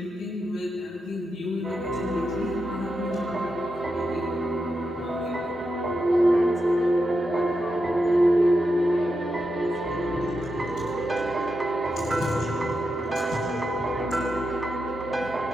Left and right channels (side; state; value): both; normal; correlation 0.87